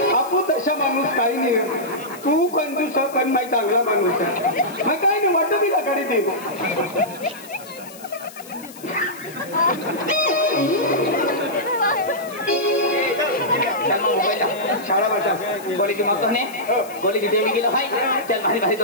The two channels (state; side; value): noise; left; hiss, 19 dB below the sound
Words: आपू तशा माणूस काही नाही तू कंजूस पण माही चांगला माणूस आहे मग काही नाही वाटतं मी गाडी दे चल मग मोबाईल शाळा वाटा बोली की मग तो ने बोली की देवी गेलो हाय चल भारी भारी